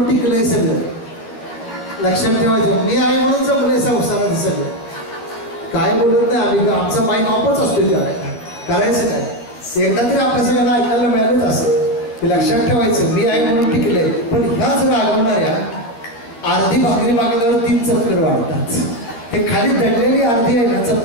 टिकलंय सगळं. लक्षात ठेवायचं, मी आहे म्हणून जमलंय संसाराचं सगळं. काय बोलत नाही आम्ही, आमचा माईक ऑफच असतो. करायचं काय, एकदा तरी आपल्या सगळ्यांना ऐकायला मिळालंच असं की लक्षात ठेवायचं, मी आहे म्हणून टिकलंय. पण ह्याच रागवणाऱ्या अर्धी भाकरी मागल्यावर 3 चक्कर वाढतात. ते खाली दडलेली अर्धी आहे ना,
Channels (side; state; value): right; late; 13 ms